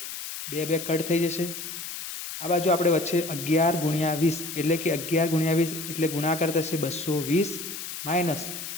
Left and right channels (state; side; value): noise; left; hiss, 8 dB below the sound